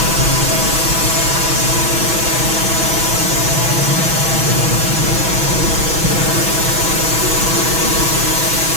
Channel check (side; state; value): left; late; 6.1 ms